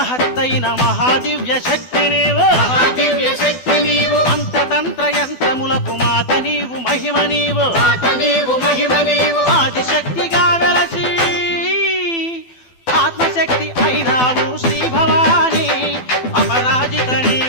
మహాదివ్య శక్తి నీవు మహాదివ్య శక్తి నీవు అంతతంత్ర యంత్రములకు మాత నీవు మహిమ నీవు మాత నీవు మహిమ నీవు ఆదిశక్తిగా వెలసి ఆత్మశక్తి అయినావు శ్రీ భవాని అపరాజిత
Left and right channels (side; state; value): right; late; 12 ms